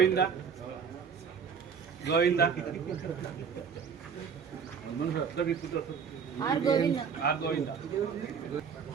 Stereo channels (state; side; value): quieter; left; 6.6 dB